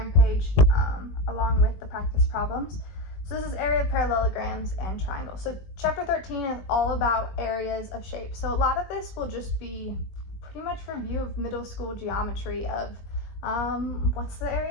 page along with the practice problems. So this is area of parallelograms and triangles. So chapter 13 is all about areas of shape. So a lot of this will just be pretty much review of middle school geometry of what's the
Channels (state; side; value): late; right; 21 ms